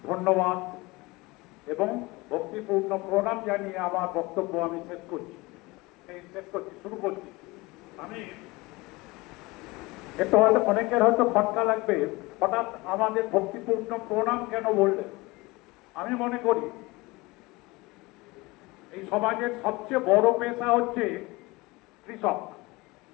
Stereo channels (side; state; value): right; quieter; 22.8 dB